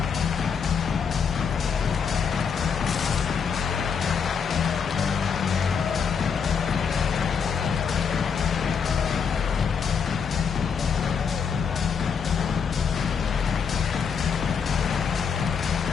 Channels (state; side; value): quieter; right; 6.4 dB